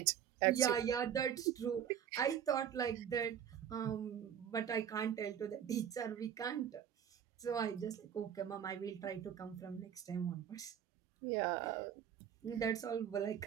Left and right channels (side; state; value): left; quieter; 9.1 dB